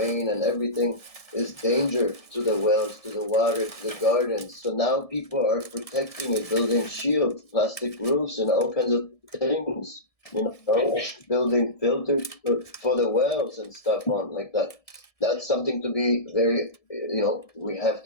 and everything is danger to the wells, to the water, to the gardens. So now people are protecting it, building shields, plastic roofs, and all kinds of things. Building filters for the wells and stuff on like that. That's something to be very, we have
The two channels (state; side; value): late; right; 1.7 ms